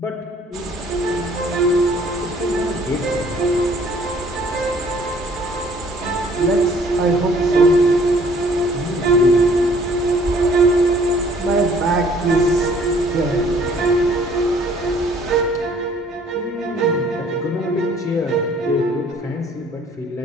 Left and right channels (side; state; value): both; normal; correlation 0.58